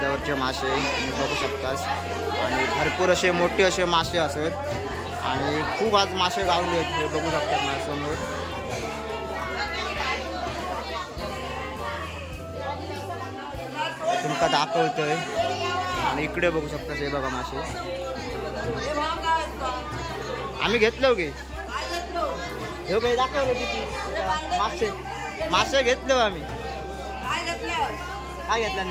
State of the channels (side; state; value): both; identical; correlation 1.00